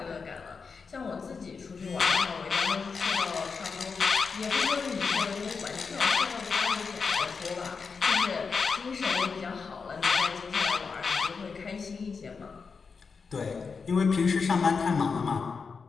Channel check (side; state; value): right; quieter; 5.2 dB